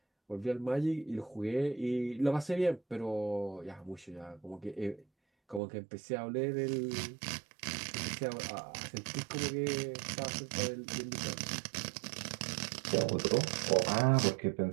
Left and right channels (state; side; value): drops out; left; at 5.6 s